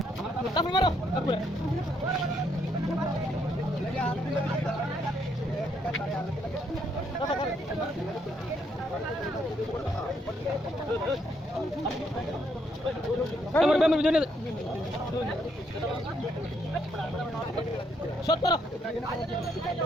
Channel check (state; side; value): normal; both; correlation 0.73